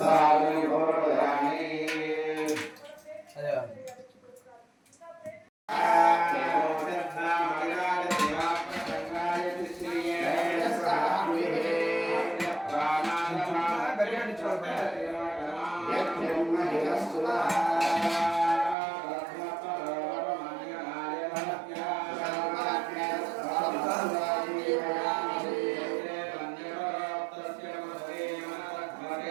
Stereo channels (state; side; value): drops out; left; at 18.8 s